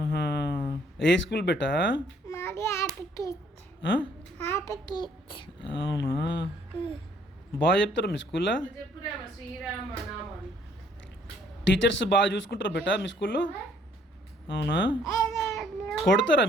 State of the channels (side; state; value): both; normal; correlation 0.63